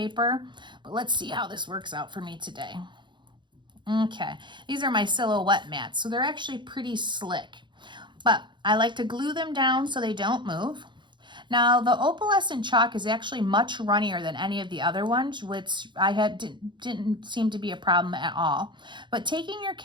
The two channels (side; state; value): left; late; 0.23 ms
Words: But let's see how this works out for me today. Okay, these are my silhouette mats, so they're actually pretty slick. But I like to glue them down so they don't move. Now, the opalescent chalk is actually much runnier than any of the other ones, which didn't seem to be a problem at all. But taking your